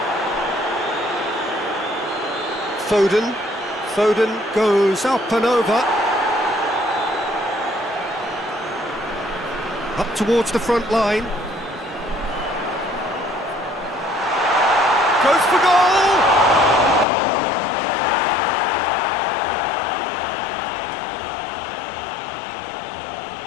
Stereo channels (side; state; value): right; drops out; at 17.1 s